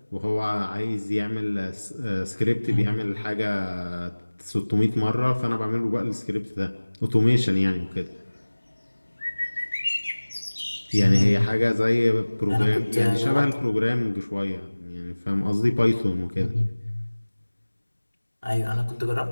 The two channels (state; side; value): inverted; both; correlation -1.00